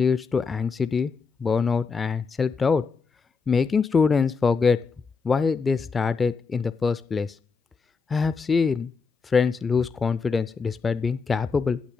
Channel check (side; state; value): right; quieter; 5.1 dB